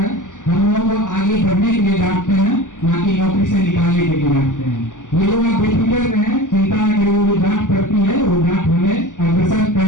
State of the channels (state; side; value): late; right; 0.87 ms